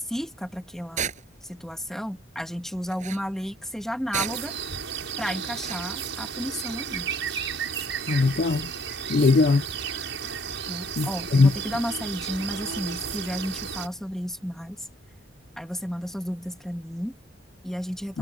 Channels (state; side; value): normal; both; correlation 0.63